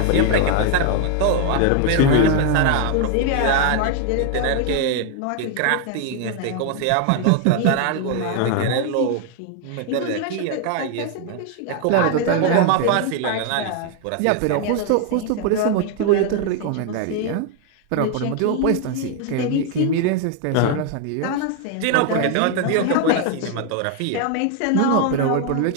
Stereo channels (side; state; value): both; different; correlation 0.00